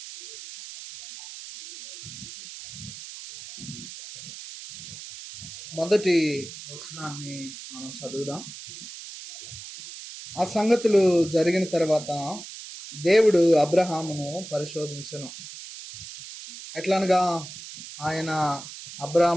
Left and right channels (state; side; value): noise; right; hiss, 13 dB below the sound